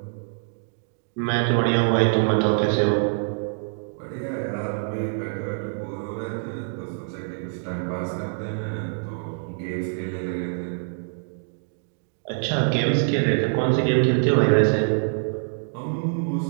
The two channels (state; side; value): silent; left; digital silence